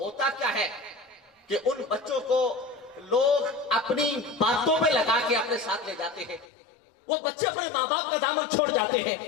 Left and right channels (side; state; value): right; drops out; at 6.5 s